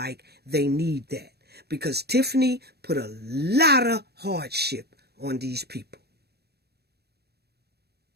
they need that. Because Tiffany put a lot of hardship on these people.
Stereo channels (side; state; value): left; late; 0.47 ms